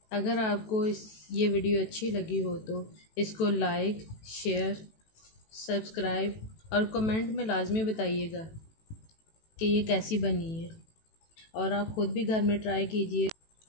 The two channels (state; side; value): late; right; 18 ms